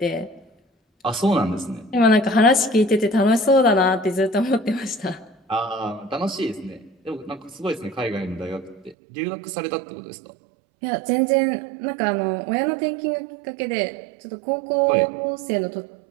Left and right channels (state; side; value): drops out; left; at 9.0 s